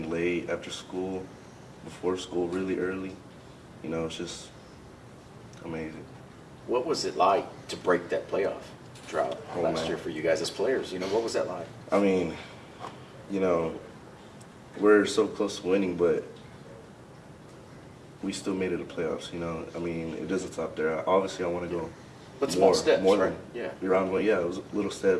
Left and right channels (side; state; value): both; identical; correlation 1.00